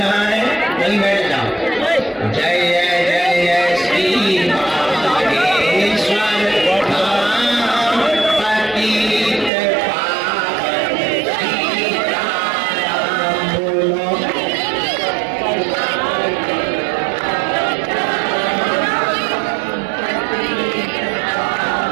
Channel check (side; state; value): left; drops out; at 9.5 s